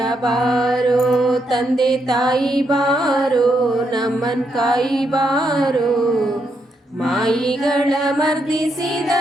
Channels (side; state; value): both; normal; correlation 0.79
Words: ತಂದೆ ತಾಯಿ ಬಾರೋ ನಮ್ಮನ್ ಕಾಯಿ ಬಾರೋ. ಮಾಯಿಗಳ ಮರ್ದಿಸಿದ